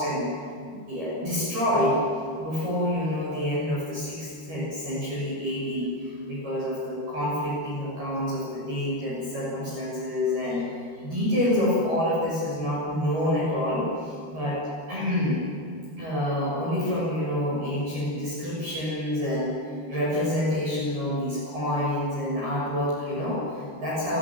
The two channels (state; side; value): late; left; 13 ms